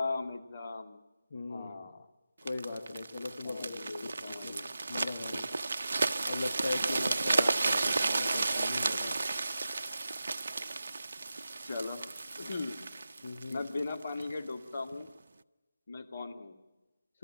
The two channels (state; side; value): inverted; both; correlation -0.92